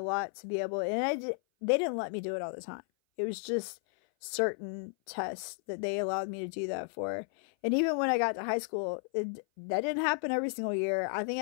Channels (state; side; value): silent; right; 56 dB below the other